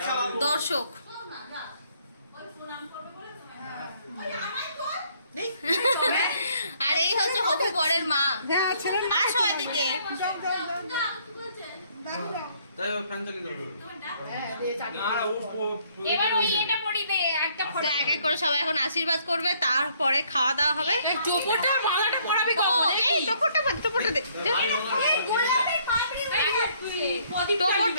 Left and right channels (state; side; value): inverted; both; correlation -0.65